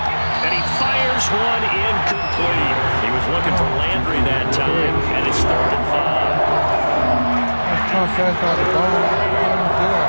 And he fires one incomplete. He was looking for Landry that time, and it's 3rd and 5. A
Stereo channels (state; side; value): inverted; both; correlation -1.00